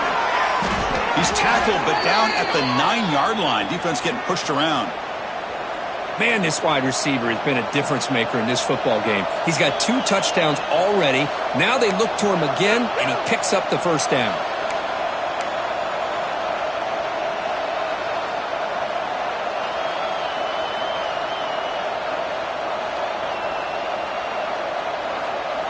He's tackled, but down at the 9-yard line. Defense getting pushed around. Man, this wide receiver has been a difference maker in this football game. He's got 2 touchdowns already. Now they look to him again, and he picks up the first down.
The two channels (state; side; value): identical; both; correlation 1.00